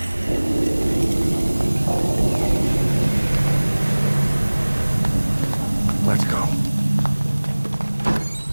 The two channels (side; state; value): both; inverted; correlation -1.00